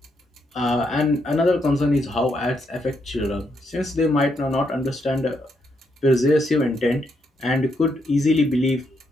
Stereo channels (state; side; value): normal; both; correlation 0.78